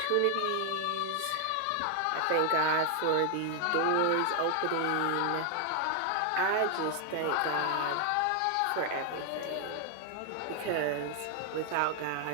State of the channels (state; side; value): different; both; correlation 0.00